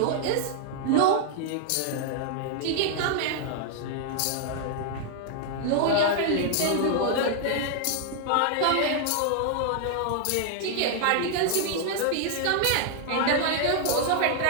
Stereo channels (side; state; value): both; different; correlation 0.00